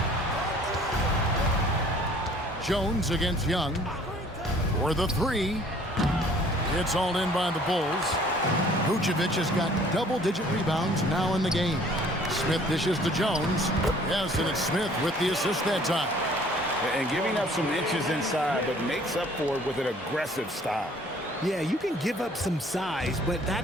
Jones against Young. For the 3. It's all in by the Bulls. Vucevic has got double-digit rebounds now in the game. Smith dishes to Jones. Yes, and it's Smith with the assist that time. And giving up some inches inside, but makes up for it with an aggressive style. Yeah, you can give up some size, but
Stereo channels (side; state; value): both; normal; correlation 0.55